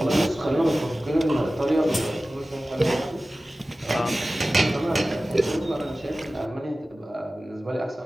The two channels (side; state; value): both; normal; correlation 0.96